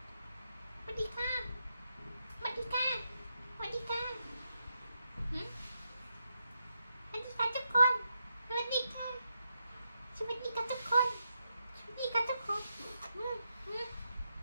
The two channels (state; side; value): inverted; both; correlation -0.84